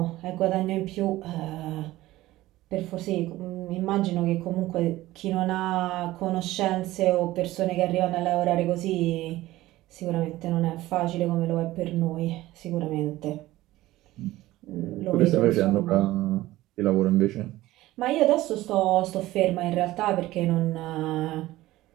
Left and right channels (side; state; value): left; quieter; 16.8 dB